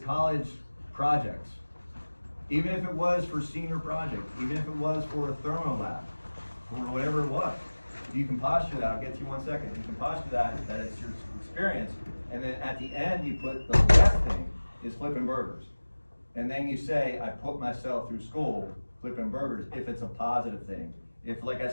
projects. Even if it was for senior project, even if it was for a thermo lab, or whatever it was. You can posture that, I'll get to you 1 second. You can posture that it's your experience, and then at the end, you put the best thing is flipping burgers. And then you say, I put myself through school flipping burgers, if it's a positive thing. If, like I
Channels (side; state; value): both; inverted; correlation -1.00